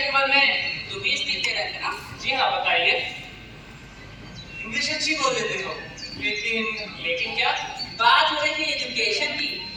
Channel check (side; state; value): both; identical; correlation 1.00